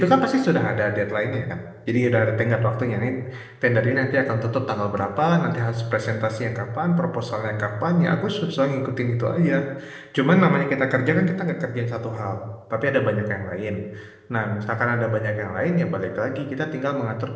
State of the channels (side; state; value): both; identical; correlation 1.00